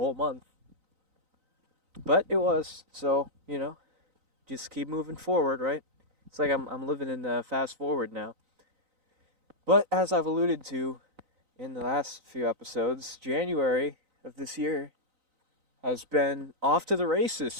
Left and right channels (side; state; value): left; late; 3.9 ms